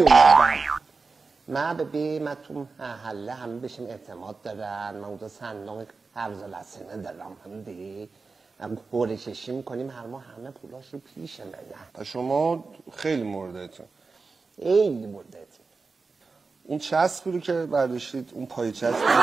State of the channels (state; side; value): quieter; left; 4.3 dB